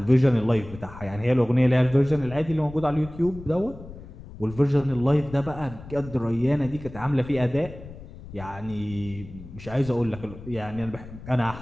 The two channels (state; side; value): noise; left; rumble, 15 dB below the sound